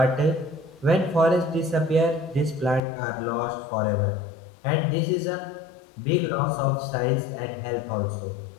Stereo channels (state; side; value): drops out; right; at 2.8 s